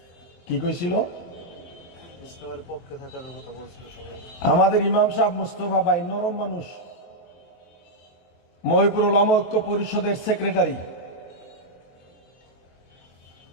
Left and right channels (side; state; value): right; late; 23 ms